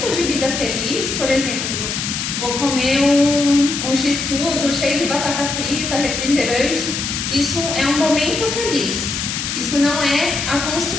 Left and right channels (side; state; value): left; noise; hiss, 3 dB below the sound